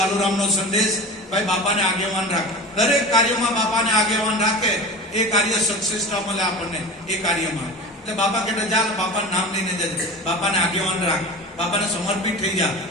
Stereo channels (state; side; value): normal; both; correlation 0.32